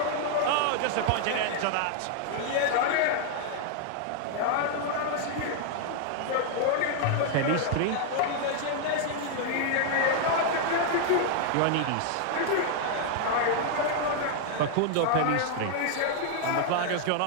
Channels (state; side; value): different; both; correlation 0.00